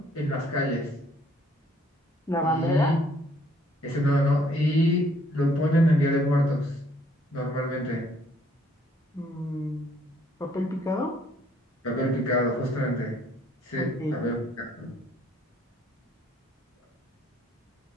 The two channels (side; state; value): both; normal; correlation 0.64